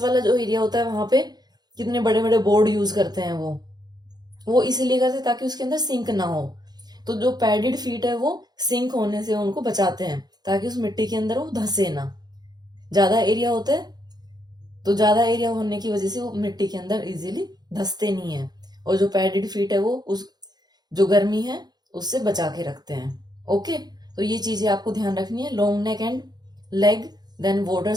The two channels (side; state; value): left; late; 0.20 ms